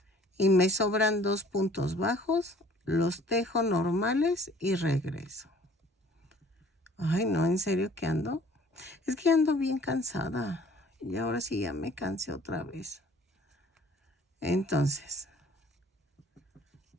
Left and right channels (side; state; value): both; normal; correlation 0.53